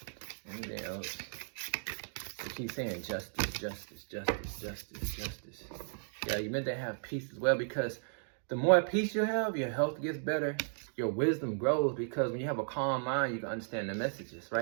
Anything else? They keep saying justice, justice, justice, justice, justice. Yeah, you're meant to have peace as well, because the more peace you have, your health gets better, your wisdom grows, because when you have a calm mind, you can understand the messages,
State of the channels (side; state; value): left; silent; digital silence